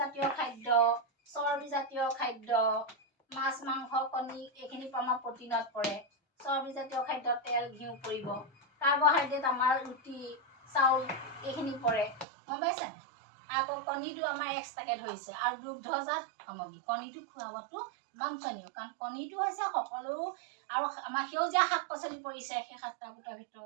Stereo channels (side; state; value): left; drops out; at 12.2 s